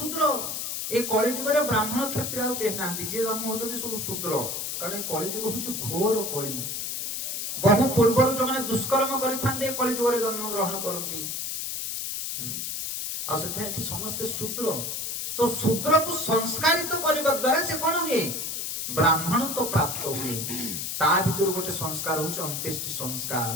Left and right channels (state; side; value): noise; left; hiss, 4 dB below the sound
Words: ଏ କଳି ଯୁଗରେ ବ୍ରାହ୍ମଣ କ୍ଷତ୍ରିୟ ଆଉ କେହି ନାହାନ୍ତି। ଯିଏ ଜନ୍ମ ହଉଛନ୍ତି ସବୁ ଶୂଦ୍ର। କାରଣ ଏ କଳି ଯୁଗ ହଉଛି ଘୋର କଳି। ବହୁ ପୂର୍ବରୁ ଯୋଉମାନେ ଦୁଷ୍କର୍ମ କରିଥାନ୍ତି, ଏ କଳି ଯୁଗରେ ଜନ୍ମ ଗ୍ରହଣ କରନ୍ତି। ଆଉ ସେଥିପାଇଁ ଏଠି ସମସ୍ତେ ଶୂଦ୍ର। तो शूद्र को संस्कारित करने द्वारा से कौन हुए ब्राह्मण तो प्राप्त हुए ता भीतर गोटे संस्कार होचे अंत्येष्टि